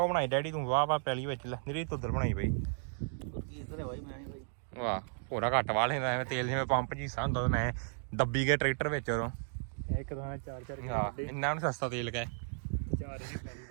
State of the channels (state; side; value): silent; left; digital silence